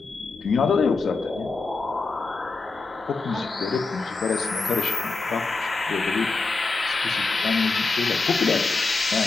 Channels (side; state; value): right; quieter; 3.9 dB